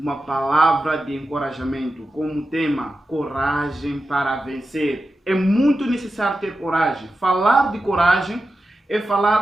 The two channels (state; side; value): normal; both; correlation 0.91